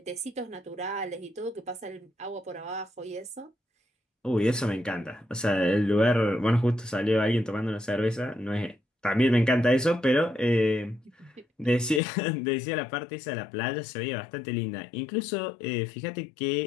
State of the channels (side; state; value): right; drops out; at 12.0 s